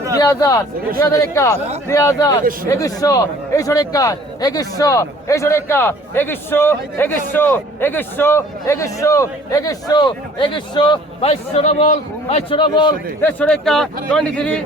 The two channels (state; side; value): normal; both; correlation 0.53